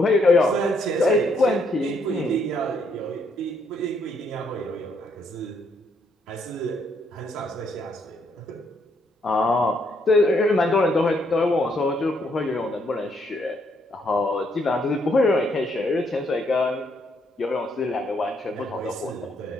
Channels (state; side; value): normal; both; correlation 0.73